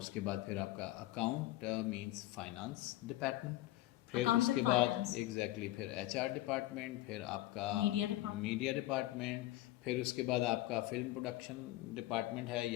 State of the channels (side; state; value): right; quieter; 16.3 dB